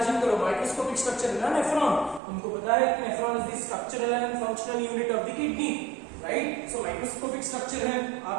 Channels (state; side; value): drops out; left; at 2.2 s